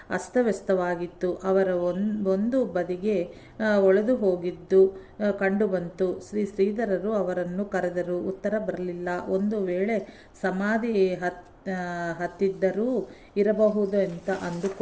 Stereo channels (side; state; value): both; identical; correlation 1.00